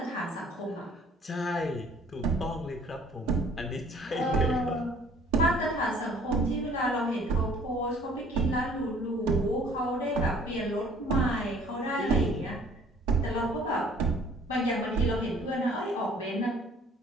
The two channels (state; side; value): normal; both; correlation 0.55